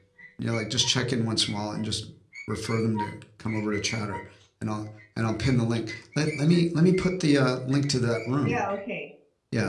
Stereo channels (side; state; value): both; identical; correlation 1.00